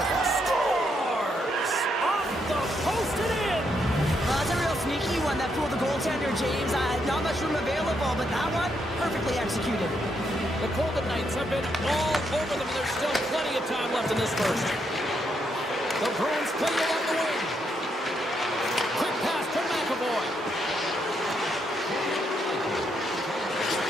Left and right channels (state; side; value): normal; both; correlation 0.78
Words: Scores! Off the post and in! Well, that's a real sneaky one that fooled the goaltender, James. Not much room available, but that one, perfectly executed. The Golden Knights have been all over them, and there's still plenty of time left in this first. The Bruins play along the wing. Quick pass to McAvoy.